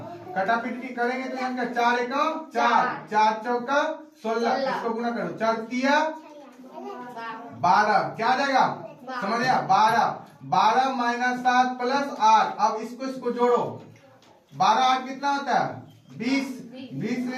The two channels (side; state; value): both; identical; correlation 1.00